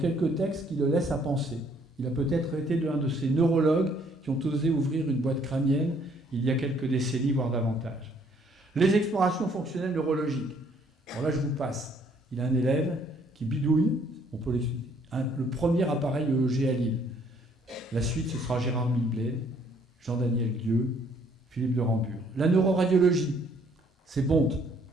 textes qui le laissent à penser. Il a peut-être été l'un de ces neurologues qui ont osé ouvrir une boîte crânienne il y a quelques décennies, voire davantage. Les explorations fonctionnelles neurologiques. Alors là, je vous passe. Il a un élève qui bidouille, on peut l'expliquer, le premier appareil EEG à Lille. La suite, ce sera Gérard Milbled, Jean-Daniel Guieux, Philippe de Rambure. La neuroradiologie, c'est Bonte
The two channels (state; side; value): normal; both; correlation 0.64